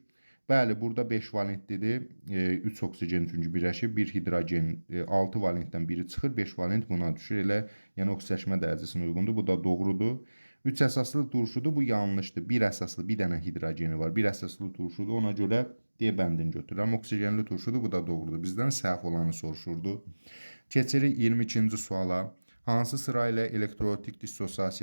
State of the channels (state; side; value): inverted; both; correlation -1.00